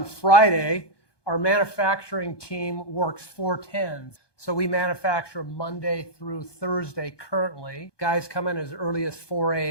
Friday. Our manufacturing team works 4/10s. So we manufacture Monday through Thursday currently. Guys come in as early as 4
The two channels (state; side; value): late; right; 1.2 ms